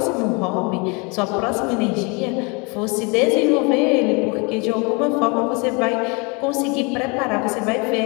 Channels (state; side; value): quieter; right; 30.5 dB